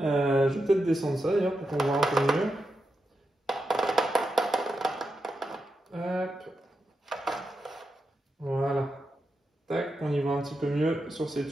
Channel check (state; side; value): normal; both; correlation 0.87